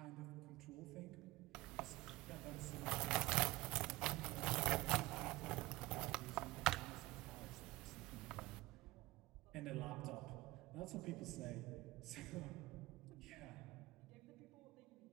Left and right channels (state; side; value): quieter; left; 19.5 dB